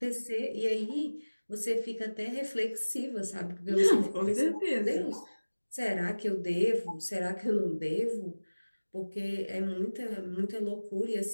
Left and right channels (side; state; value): both; inverted; correlation -1.00